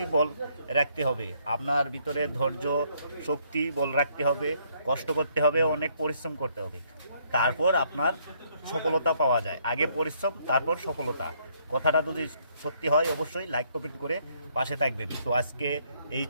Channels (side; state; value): both; inverted; correlation -0.68